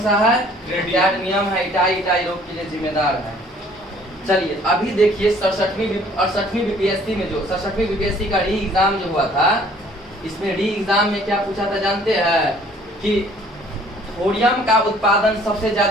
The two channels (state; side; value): normal; both; correlation 0.57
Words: सा है? कैडमियम है, इटाई रोग के लिए जिम्मेदार है। चलिए अभी देखिए 68वीं बीपीएससी में जो 67वीं बीपीएससी का री एग्जाम जो हुआ था, इसमें री एग्जाम में क्या पूछा था जानते हैं? कि थोरियम का उत्पादन सबसे